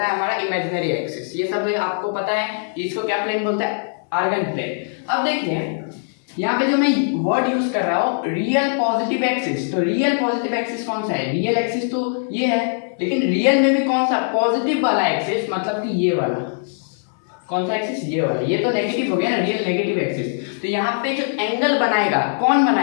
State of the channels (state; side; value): silent; right; 65 dB below the other